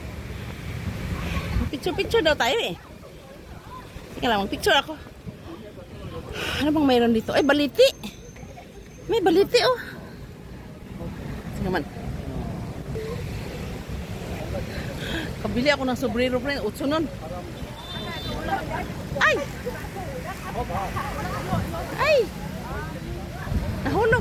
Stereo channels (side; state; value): both; identical; correlation 1.00